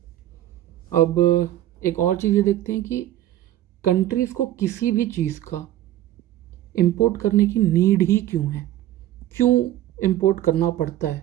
अब एक और चीज़ ये देखते हैं कि कंट्रीज़ को किसी भी चीज़ का इंपोर्ट करने की नीड ही क्यों है, क्यों इंपोर्ट करना पड़ता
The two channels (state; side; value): quieter; left; 13.4 dB